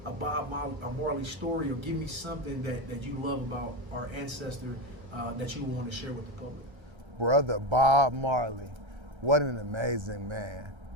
a Marley story, or give me something that you love about our ancestor that you want to share with the public. Brother Bob Marley, what an amazing man.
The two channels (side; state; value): left; late; 1.3 ms